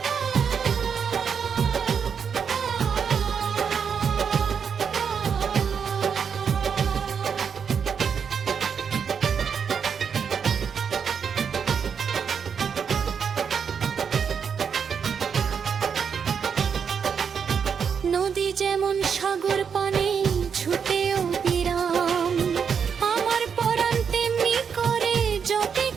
নদী যেমন সাগর পানে ছুটেও বিরাম, আমার পরাণ তেমনি করে জপে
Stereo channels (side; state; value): left; quieter; 6.8 dB